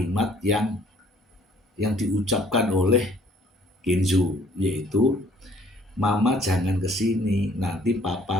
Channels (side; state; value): both; normal; correlation 0.60